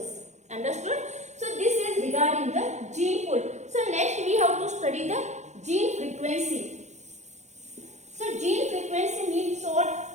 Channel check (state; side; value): late; left; 0.34 ms